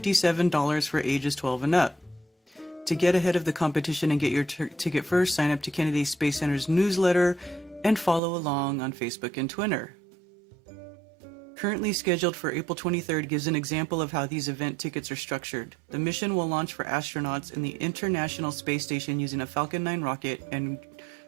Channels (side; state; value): left; drops out; at 8.2 s